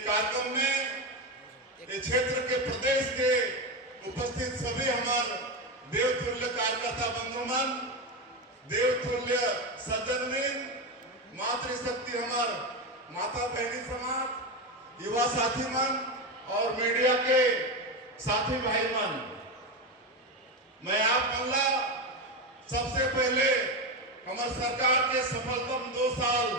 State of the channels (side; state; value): both; normal; correlation 0.15